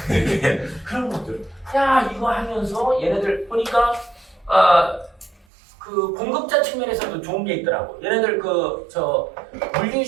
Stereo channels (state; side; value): drops out; left; at 5.5 s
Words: 그런 것들. 야, 이거 하면서 얘네들 보니까 그 공급자 측면에서도 좋은 게 있더라고. 얘네들